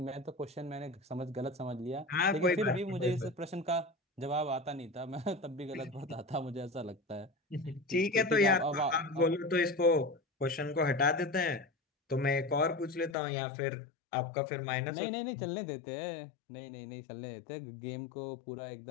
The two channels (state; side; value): drops out; right; at 13.2 s